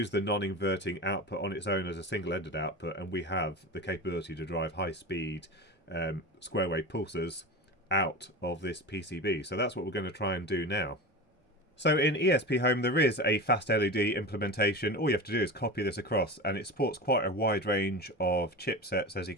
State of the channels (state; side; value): normal; both; correlation 0.28